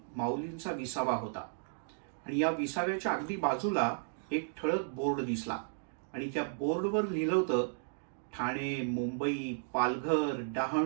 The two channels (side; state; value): left; silent; digital silence